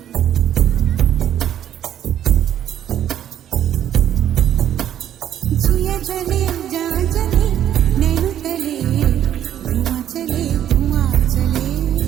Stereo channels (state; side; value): quieter; left; 10.7 dB